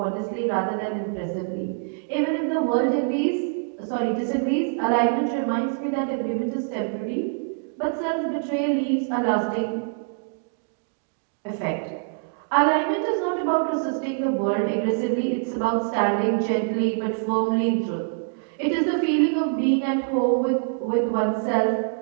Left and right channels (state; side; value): silent; left; digital silence